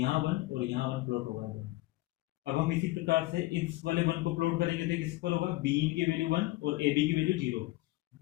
1 और यहाँ 1 प्लॉट होगा। अब हम इसी प्रकार से इस वाले 1 को प्लॉट करेंगे तो किस पर होगा, बी की वैल्यू 1 और ए बी की वैल्यू 0।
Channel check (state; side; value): quieter; right; 19.3 dB